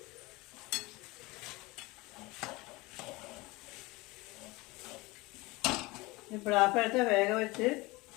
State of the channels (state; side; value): quieter; right; 22.8 dB